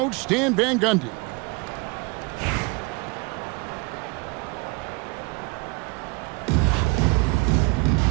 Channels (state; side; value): quieter; left; 28.2 dB